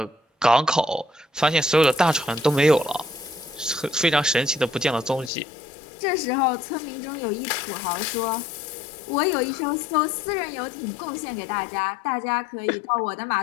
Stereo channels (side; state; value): right; drops out; at 5.3 s